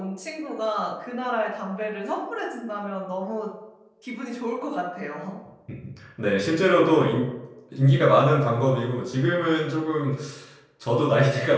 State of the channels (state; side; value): identical; both; correlation 1.00